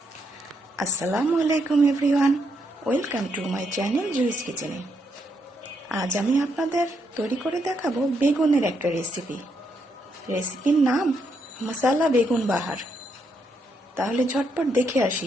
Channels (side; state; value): both; normal; correlation 0.78